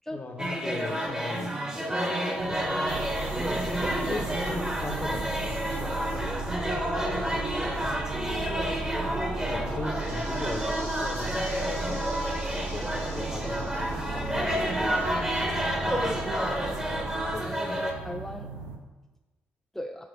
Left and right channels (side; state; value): both; normal; correlation 0.80